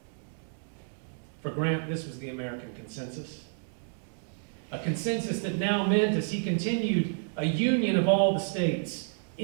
For Grant, this was the American consensus. A consensus that now meant, as he continued, a union of all the states,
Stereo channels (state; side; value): silent; left; digital silence